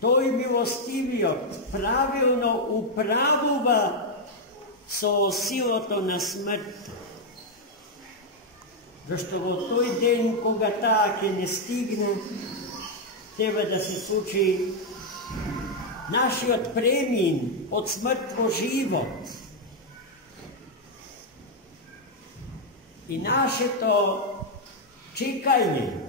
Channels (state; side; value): normal; both; correlation 0.00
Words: тој милостивиот правилно управува со силото на смртта. Зашто во тој ден, кога таа ќе не стигне, треба да се случи нашиот премин од смрт во живот. И нашето чекање